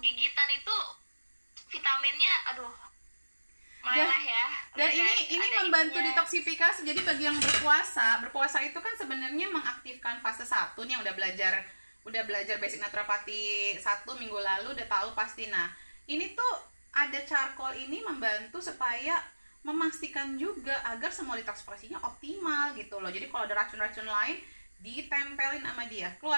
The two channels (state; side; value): inverted; both; correlation -1.00